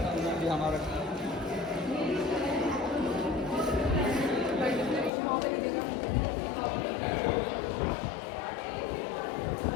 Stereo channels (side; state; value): right; drops out; at 5.1 s